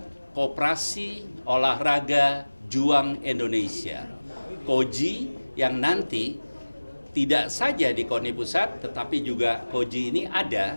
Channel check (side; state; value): both; inverted; correlation -1.00